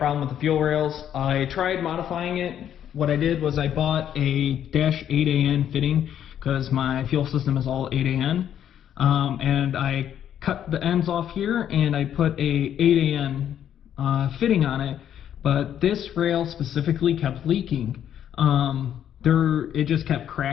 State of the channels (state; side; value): quieter; right; 10.0 dB